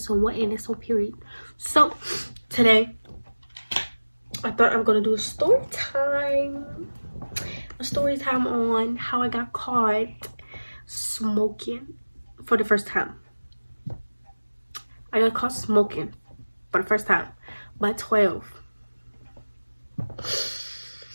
on what, and that's on period. So today I thought I'm gonna do a story time on how I got caught smoking for the first time. I got caught smoking for the first time by 12.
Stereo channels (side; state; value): both; inverted; correlation -1.00